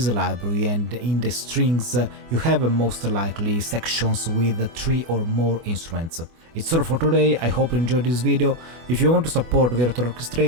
library and in the strings you have most likely sections with 3 or more instruments. It's all for today, I hope you enjoyed this video. If you want to support Virtual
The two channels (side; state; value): left; late; 24 ms